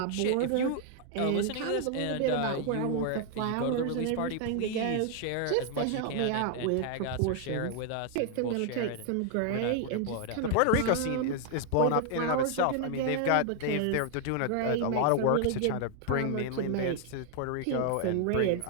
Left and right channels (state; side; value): different; both; correlation 0.00